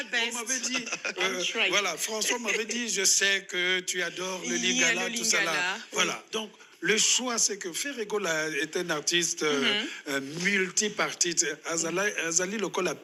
best. On m'avait dit, voilà, François m'avait dit, je sais que tu adores le Lingala, tout ça là. Voilà, donc le choix, c'est que Ferrego est un artiste multipartite. Azali Lokola à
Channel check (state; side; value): identical; both; correlation 1.00